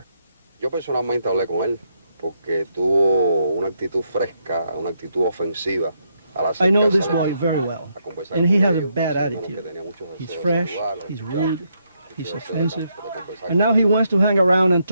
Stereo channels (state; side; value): inverted; both; correlation -0.78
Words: Yo personalmente hablé con él porque tuvo una actitud fresca, una actitud ofensiva. I know this boy very well, and he has a bad attitude. He's fresh, he's rude, he's offensive, and now he wants to hang around and